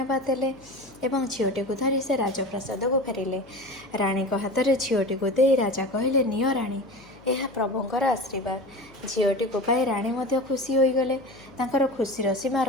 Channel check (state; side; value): noise; left; hum, 24 dB below the sound